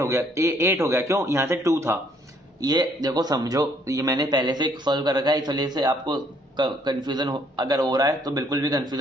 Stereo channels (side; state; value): both; normal; correlation 0.65